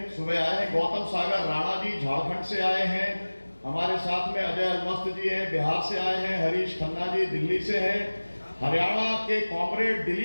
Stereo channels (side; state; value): both; inverted; correlation -1.00